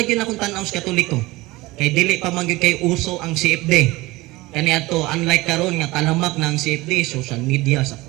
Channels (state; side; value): quieter; left; 20.6 dB